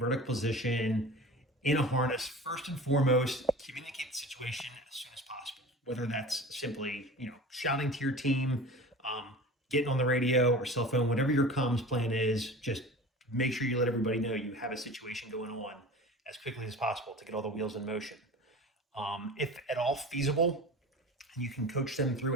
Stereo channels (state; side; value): normal; both; correlation 0.37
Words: position in a harness, first and foremost, communicate the situation as soon as possible. Whether that's simply, shouting to your team, getting on the radio or cell phone, whatever your comms plan is, just make sure you let everybody know you have a situation going on as quickly as possible to get all the wheels in motion. If at all feasible, and you can coach them